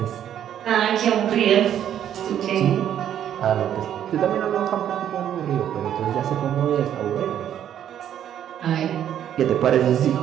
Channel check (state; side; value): quieter; left; 10.2 dB